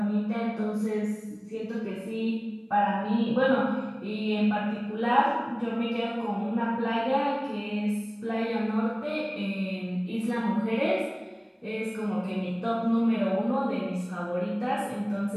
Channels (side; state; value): both; identical; correlation 1.00